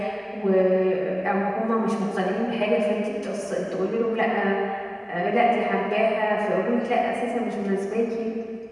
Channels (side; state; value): both; identical; correlation 1.00